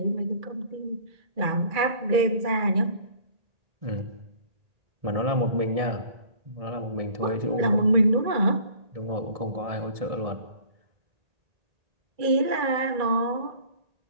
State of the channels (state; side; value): late; left; 2.3 ms